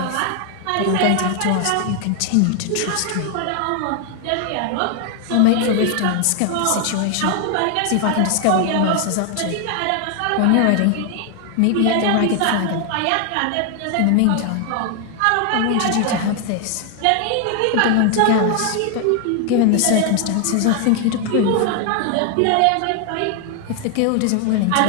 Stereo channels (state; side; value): different; both; correlation 0.00